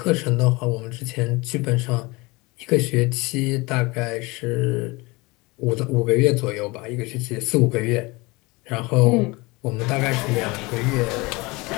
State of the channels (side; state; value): right; quieter; 24.3 dB